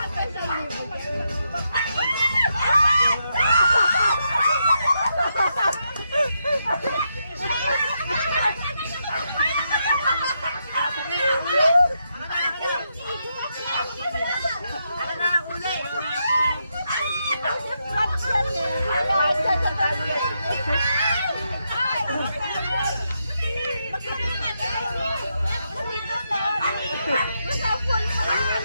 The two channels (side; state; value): both; inverted; correlation -0.82